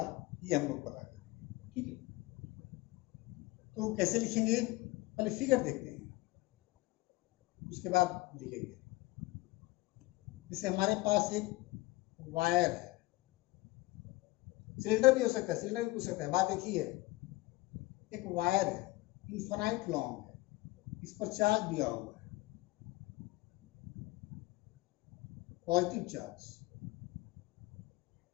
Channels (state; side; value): quieter; right; 20.6 dB